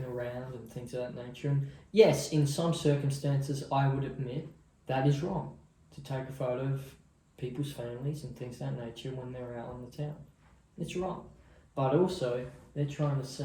around and things of that nature. And yes, in some circumstances, I would admit that is wrong to take a photo of people's families and things of that nature when they're out on the town. It's wrong. But also, they're trying to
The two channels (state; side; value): identical; both; correlation 1.00